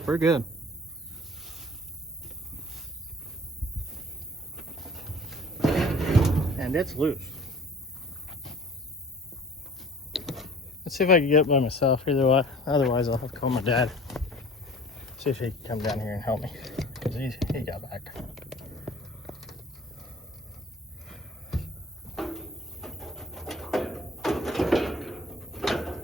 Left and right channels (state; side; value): normal; both; correlation 0.48